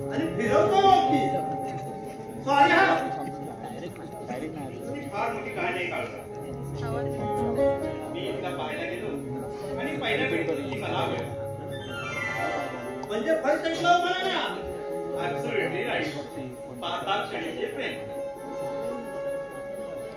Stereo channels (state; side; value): identical; both; correlation 1.00